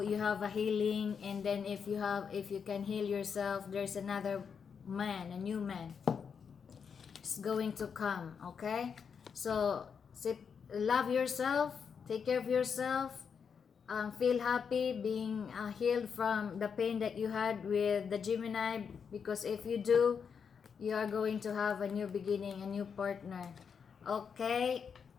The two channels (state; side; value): quieter; right; 6.5 dB